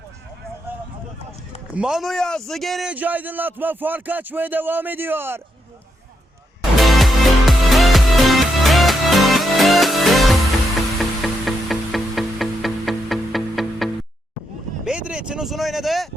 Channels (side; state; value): both; normal; correlation 0.81